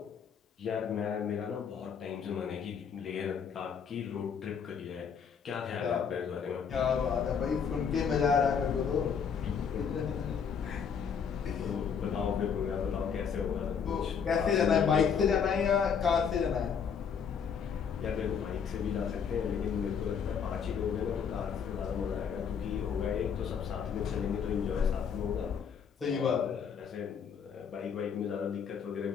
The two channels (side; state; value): right; quieter; 6.9 dB